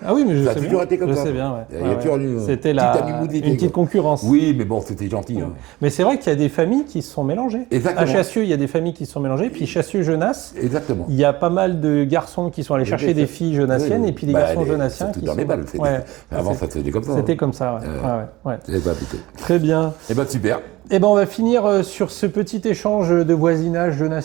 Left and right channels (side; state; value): left; quieter; 18.9 dB